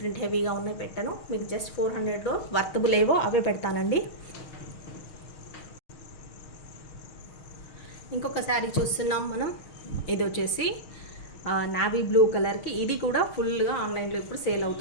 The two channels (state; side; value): late; right; 6.4 ms